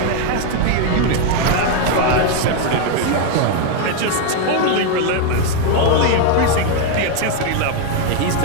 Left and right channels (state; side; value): different; both; correlation 0.01